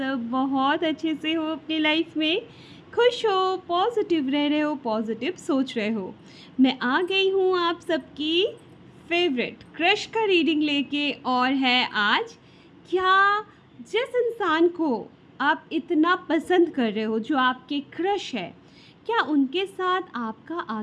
बहुत अच्छे से हो, अपनी लाइफ में खुश हो, पॉजिटिव रह रहे हो, पॉजिटिव सोच रहे हो। मैं आ गई हूँ आप सबकी फेवरेट क्रश का रीडिंग लेके, और है आज क्या जिस इंसान को आप इतना पसंद कर रहे हो, जो आपके क्रश है, क्या उनके साथ आपका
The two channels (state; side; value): identical; both; correlation 1.00